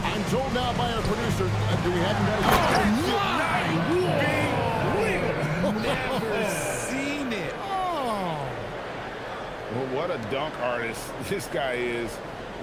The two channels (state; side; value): identical; both; correlation 1.00